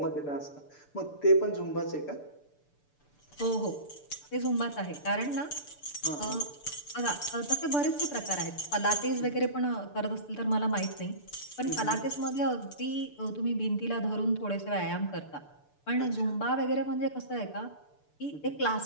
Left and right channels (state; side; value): late; right; 6.8 ms